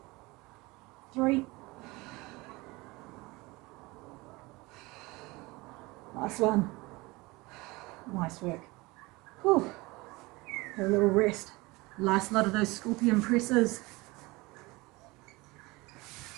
3. Last one. Nice work. Whew. Have a little rest. Last lot of those scorpion presses.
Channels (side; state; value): left; quieter; 23.0 dB